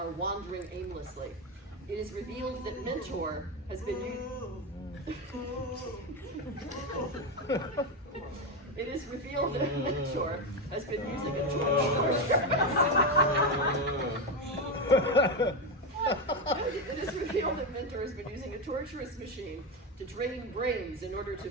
wandering aimlessly. It is revealed that Mentor has been It is revealed that Mentor has been using a It is revealed that Mentor has been using a torturous machine to drain brains in order to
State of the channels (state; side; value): normal; both; correlation 0.12